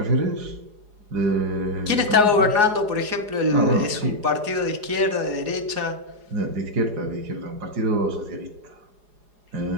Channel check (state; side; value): late; left; 4.8 ms